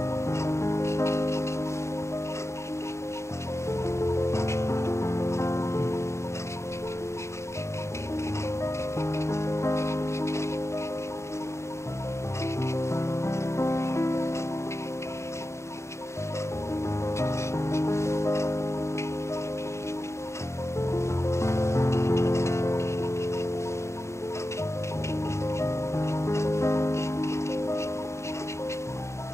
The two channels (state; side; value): late; right; 0.14 ms